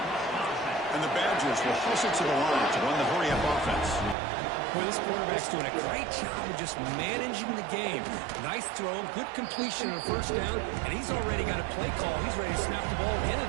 And the Badgers will hustle to the line to run the hurry-up offense. Well, this quarterback's doing a great job of just managing the game. Nice throw, good completion on a first down, and he's already got a play call. He's ready to snap the ball again.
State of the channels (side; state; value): left; drops out; at 4.2 s